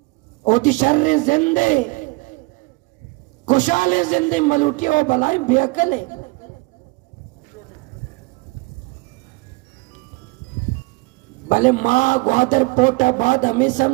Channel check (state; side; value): quieter; left; 25.1 dB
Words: ओती शर्रे जिंदे खुशहाल जिंदे मलूटी और भलाई भी अकले भले माँ ग्वादर पोटा बाद हमें